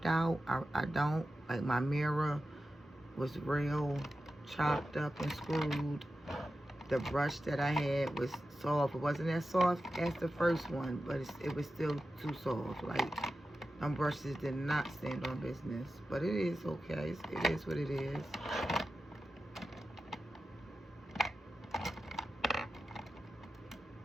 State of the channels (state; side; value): normal; both; correlation 0.92